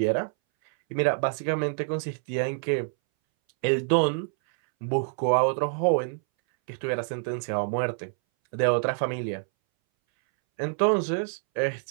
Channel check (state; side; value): silent; left; 60 dB below the other